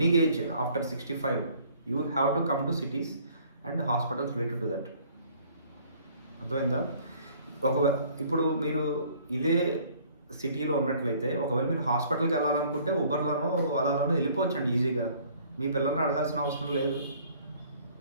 age after 65 you have to come to cities and hospitals related to that. అర్థమైందా? ఇప్పుడు మీరు ఇదే సిటీలో ఉన్నట్లయితే, ఒకవేళ మీరు హాస్పిటల్కి వెళ్ళాలనుకుంటే ఉబర్లోనో అలాలోనో వెళ్ళిపోవచ్చండి ఈజీగా. మీ పిల్లల్ని అడగాల్సిన అవసరం లేదు.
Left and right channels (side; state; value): both; inverted; correlation -0.57